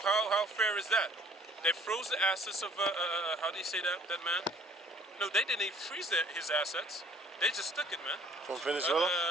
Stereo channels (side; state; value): both; normal; correlation 0.55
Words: how fair is that? They froze the assets of how do you say that man? No, they didn't freeze his assets. They just took it, man. From Venezuela?